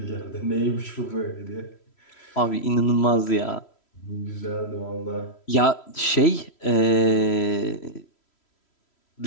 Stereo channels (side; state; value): right; late; 3.1 ms